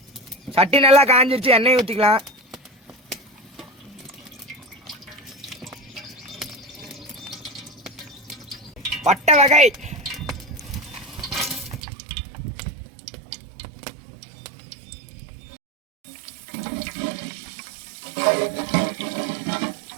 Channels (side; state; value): left; drops out; at 11.8 s